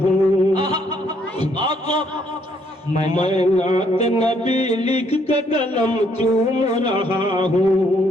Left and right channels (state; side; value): normal; both; correlation 0.69